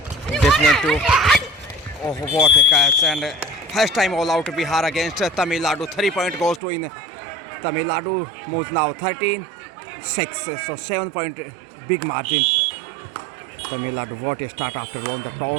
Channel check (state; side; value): drops out; left; at 6.6 s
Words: definitely. Oh, what a catch! And first time all-out Bihar against Tamil Nadu. 3 point goes to in Tamil Nadu. Moves now 13-6. So 7 point big margin. Tamil Nadu, what a start after won the